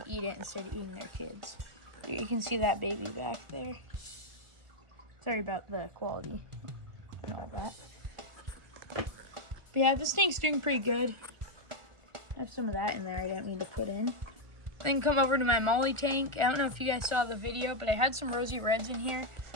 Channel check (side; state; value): left; late; 1.4 ms